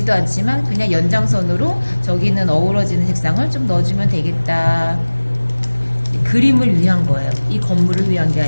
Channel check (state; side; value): inverted; both; correlation -1.00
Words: 않지만 그냥 연장선으로 저기는 어우러지는 색상을 좀 넣어주면 되겠다. 그림을 위한 거예요. 이 건물을 위한 게